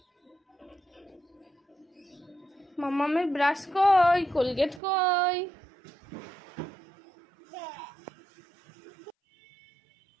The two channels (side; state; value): left; drops out; at 4.8 s